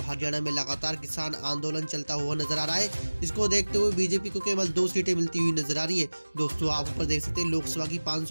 हरियाणा में लगातार किसान आंदोलन चलता हुआ नजर आ रहा है। इसको देखते हुए बीजेपी को केवल 2 सीटें मिलती हुई नजर आ रही है। दोस्तों आप ऊपर देख सकते हैं लोकसभा की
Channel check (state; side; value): inverted; both; correlation -1.00